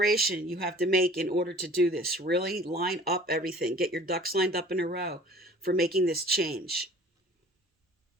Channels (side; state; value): both; normal; correlation 0.48